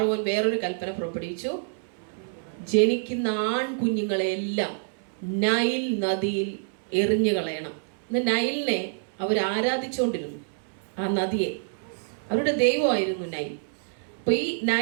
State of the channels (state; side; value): silent; left; 60 dB below the other